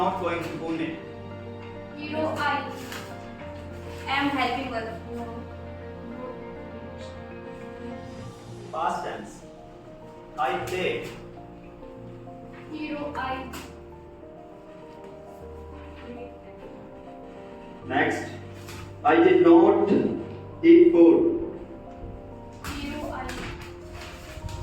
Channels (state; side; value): identical; both; correlation 1.00